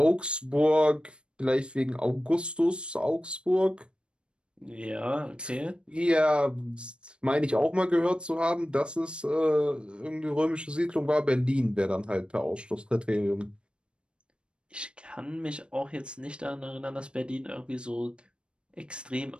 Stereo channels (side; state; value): left; late; 0.056 ms